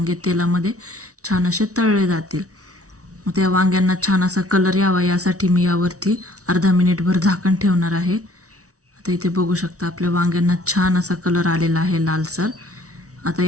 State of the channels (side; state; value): left; late; 0.66 ms